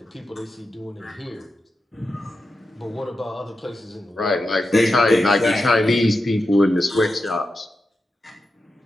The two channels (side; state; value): both; normal; correlation 0.90